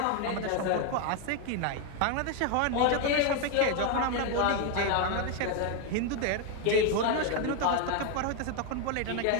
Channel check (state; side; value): different; both; correlation 0.01